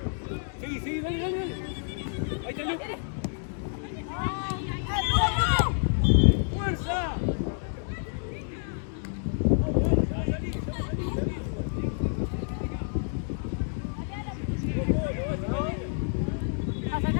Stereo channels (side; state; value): right; silent; digital silence